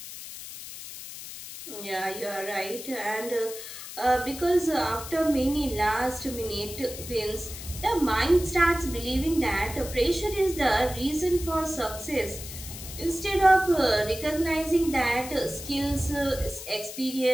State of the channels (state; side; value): noise; left; hiss, 11 dB below the sound